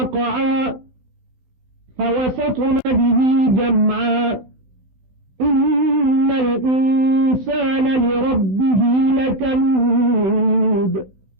फवसतन बिही जमआ इन्नल इंसान लिरब्बिही लकनूद।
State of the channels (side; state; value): left; late; 16 ms